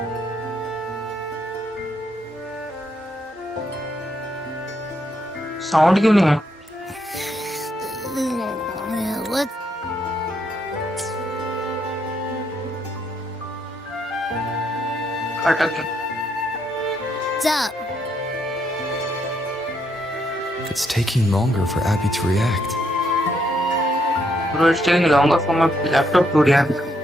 साउंड क्यों नहीं है? What? अटक गया। What's up? It's taking longer for Abby to react. Bro, it's taking longer for my laptop to react.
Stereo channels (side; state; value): both; normal; correlation 0.75